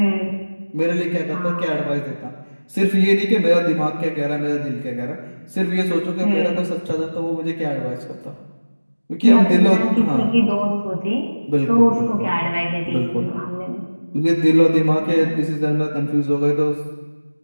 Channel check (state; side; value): inverted; both; correlation -1.00